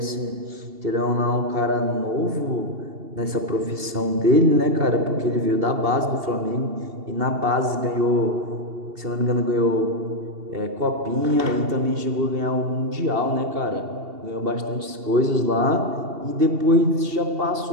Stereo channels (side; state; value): left; late; 2.7 ms